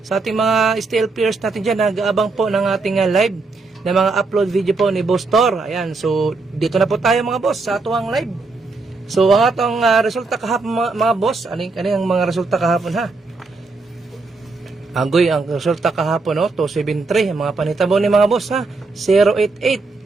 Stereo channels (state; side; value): quieter; left; 3.8 dB